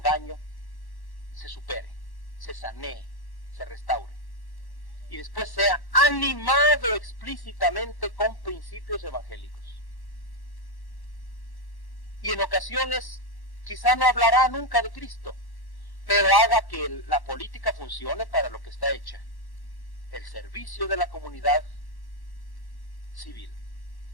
se supere, se sanee, se restaure. Y después sea animado explícitamente con principios evangélicos. Y en ocasiones quizá no hablará nunca de Cristo, pero haga que la política funcione para lo que está hecha, el servicio de la comunidad civil,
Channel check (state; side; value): late; right; 1.1 ms